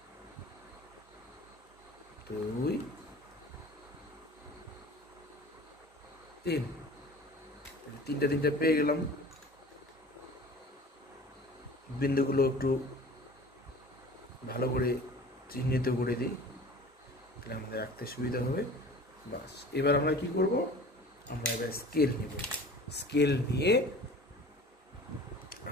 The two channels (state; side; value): normal; both; correlation 0.42